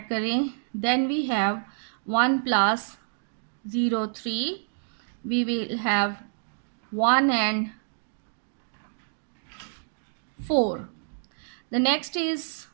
करें then we have 1 plus 0 3 we will have 1 and 4. The next is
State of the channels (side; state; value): left; silent; digital silence